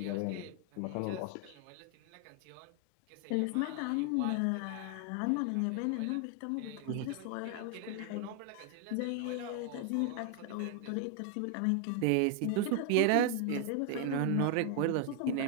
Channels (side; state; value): both; different; correlation 0.00